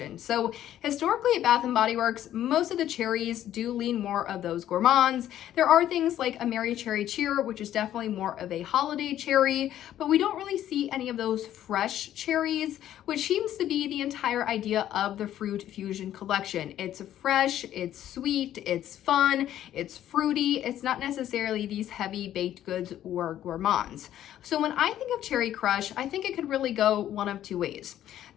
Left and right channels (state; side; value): quieter; right; 11.9 dB